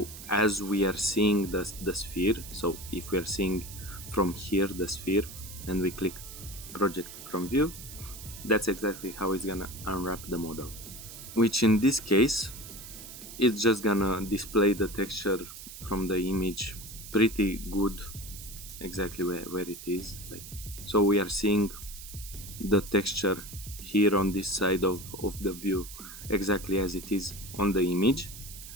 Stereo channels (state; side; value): noise; right; hiss, 13 dB below the sound